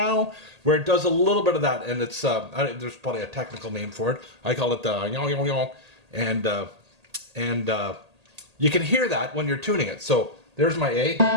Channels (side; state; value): left; late; 1.8 ms